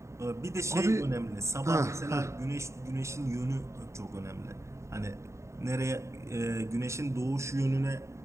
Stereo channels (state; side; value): late; left; 0.14 ms